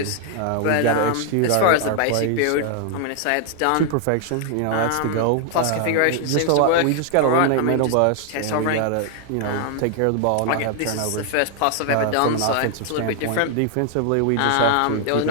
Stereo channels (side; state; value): both; different; correlation 0.00